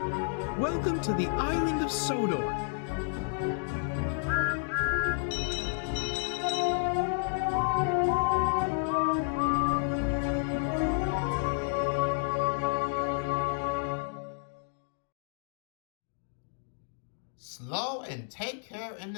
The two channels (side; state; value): right; silent; digital silence